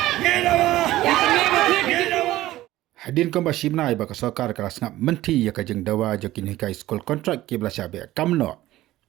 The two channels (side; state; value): left; quieter; 15.8 dB